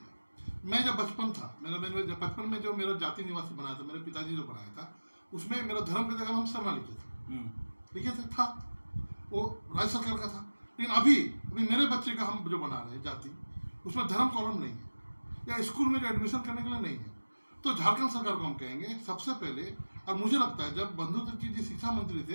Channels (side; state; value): both; inverted; correlation -1.00